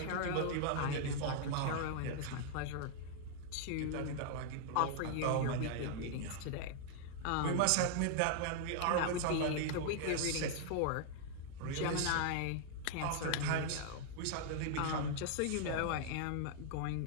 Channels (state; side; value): different; both; correlation -0.01